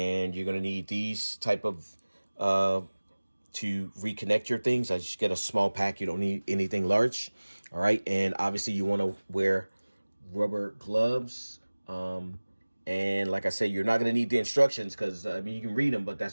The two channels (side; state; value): both; inverted; correlation -1.00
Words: you're gonna need these type of to reconnect your things. I just get a small pack. You don't need anything large. All right. And obviously you want to wear rubber gloves. And like I said, you're not going to need the instructions because I mean, you can read them, but